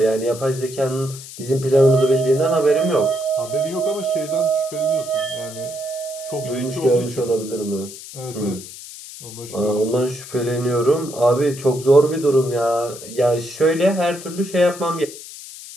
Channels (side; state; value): left; noise; hiss, 14 dB below the sound